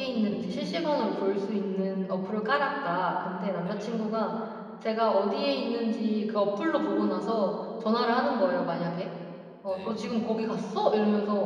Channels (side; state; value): both; identical; correlation 1.00